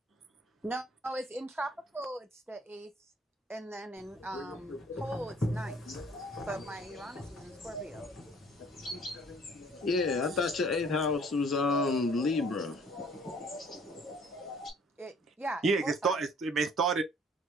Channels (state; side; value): normal; both; correlation 0.56